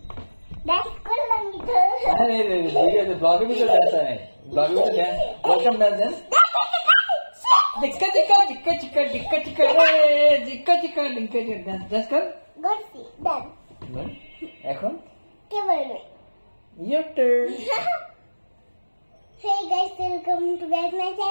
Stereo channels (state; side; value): inverted; both; correlation -1.00